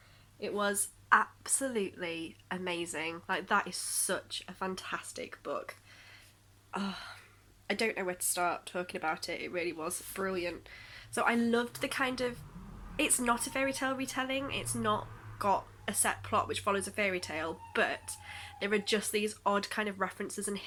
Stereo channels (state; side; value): identical; both; correlation 1.00